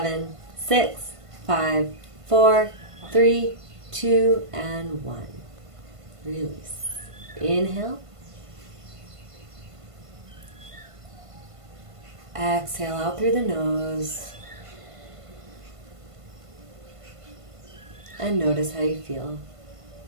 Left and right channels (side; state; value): left; late; 1.5 ms